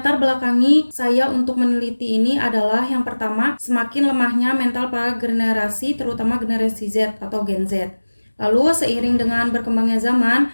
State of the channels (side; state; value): both; inverted; correlation -1.00